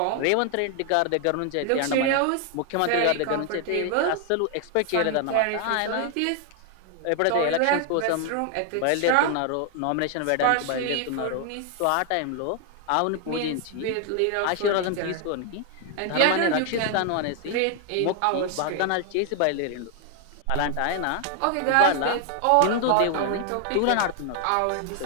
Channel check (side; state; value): both; different; correlation 0.00